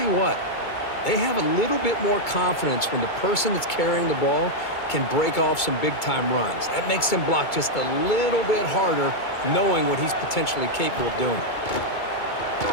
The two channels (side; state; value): right; late; 2.2 ms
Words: you what, they have a little bit more confidence when the person that's carrying the ball can break off some big-time runs. That makes them block just a little bit harder, knowing what he's potentially capable of doing.